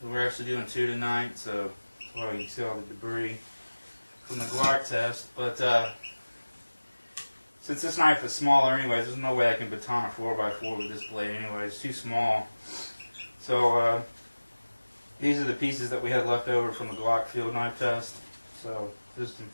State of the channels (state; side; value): inverted; both; correlation -1.00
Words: We're actually doing 2 tonight, so well, you can see all the debris from the Glock test. But since this knife is smaller, anyways, there's no way I can baton a 4x4 with this blade. Anyway, it's too small. So these are the pieces that we had left over from the Glock field knife test. So just some